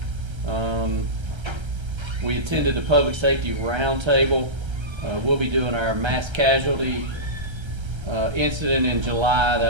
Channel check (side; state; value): left; late; 1.3 ms